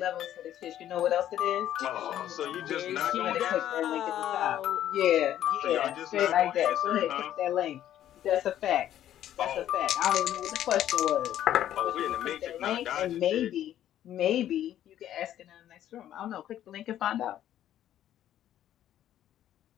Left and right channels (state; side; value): quieter; right; 11.7 dB